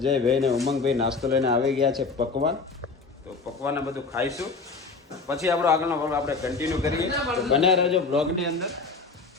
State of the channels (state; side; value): quieter; right; 4.2 dB